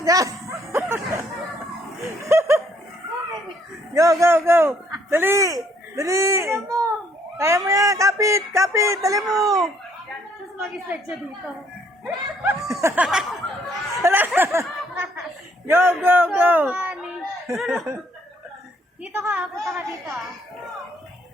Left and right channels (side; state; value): both; normal; correlation 0.66